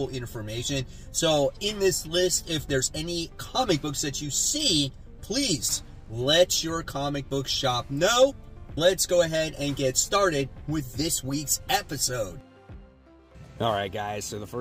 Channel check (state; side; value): identical; both; correlation 1.00